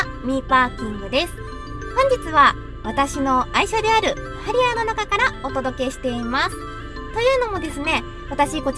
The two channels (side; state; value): both; identical; correlation 1.00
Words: ミーパーキングです。本日は私の愛車であるハリアーの中からお届けしています。というのもですね、私こ